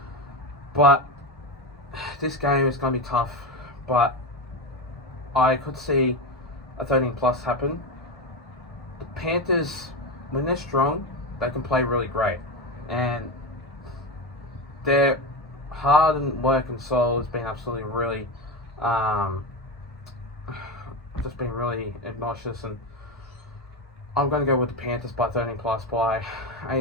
But this game is going to be tough, but I could see a 13 plus happen. The Panthers, when they're strong, they can play really great, and their hard work and soul has been absolutely really just been really obnoxious, and I'm going to go with the Panthers by 13 plus by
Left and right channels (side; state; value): both; normal; correlation 0.17